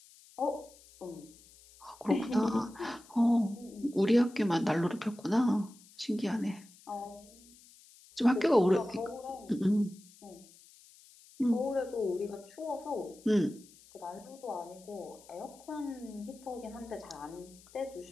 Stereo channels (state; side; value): noise; left; hiss, 24 dB below the sound